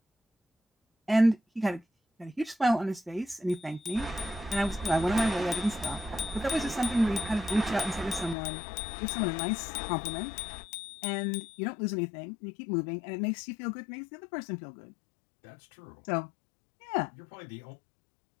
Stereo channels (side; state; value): right; drops out; at 8.3 s